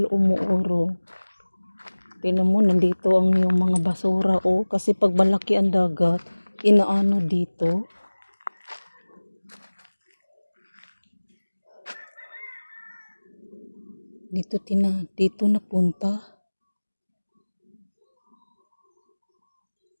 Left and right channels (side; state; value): both; inverted; correlation -1.00